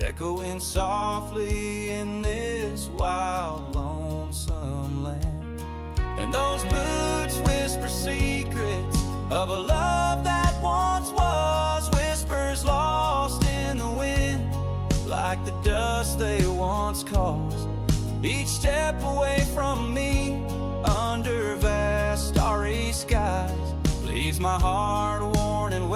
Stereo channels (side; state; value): both; identical; correlation 1.00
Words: echoing softly in this wild, lonesome land. And those boots whisper secrets of a love that once was, whispers lost in the wind, like the dust they once caused. Each step away from me, under vast starry skies, leaves my heart worn and